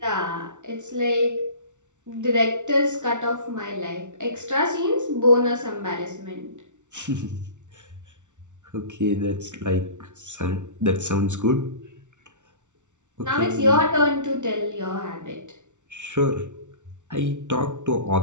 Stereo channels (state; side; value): late; left; 0.85 ms